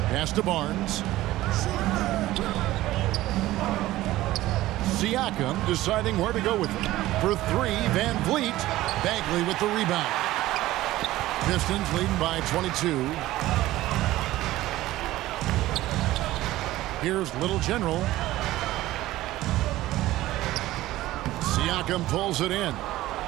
Pass to Barnes. Siakam deciding where to go with it. For 3, Van Vliet. Bagley with the rebound. Pistons leading by 22. Here's Little General. Siakam pulls it in.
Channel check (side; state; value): left; quieter; 16.2 dB